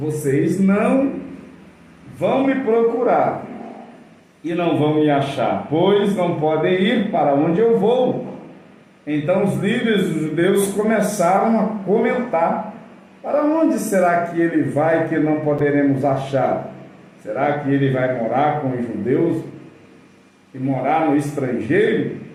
não vão me procurar e não vão me achar, pois não podem ir para onde eu vou. Então os líderes dos judeus começaram a comentar: para onde será que ele vai que não poderemos achar? Será que ele vai morar com os judeus e morar no estrangeiro?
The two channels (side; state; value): both; identical; correlation 1.00